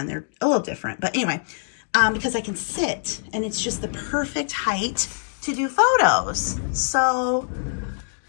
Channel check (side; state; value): right; silent; digital silence